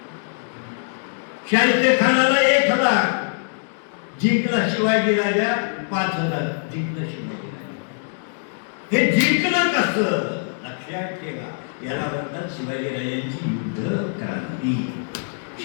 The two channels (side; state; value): right; silent; digital silence